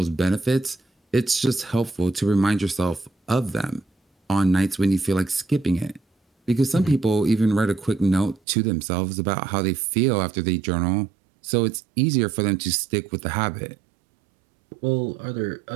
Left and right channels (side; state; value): left; drops out; at 8.4 s